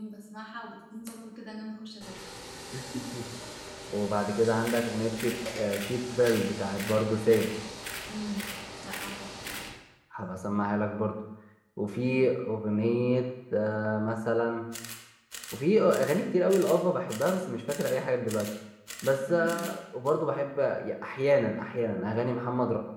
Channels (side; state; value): both; identical; correlation 1.00